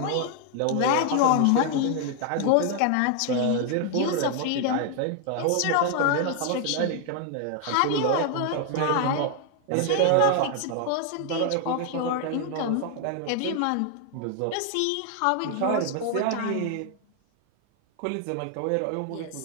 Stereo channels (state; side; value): different; both; correlation 0.00